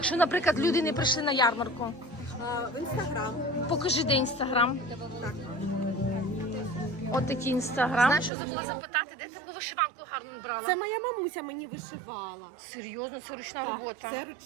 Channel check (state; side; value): drops out; left; at 8.3 s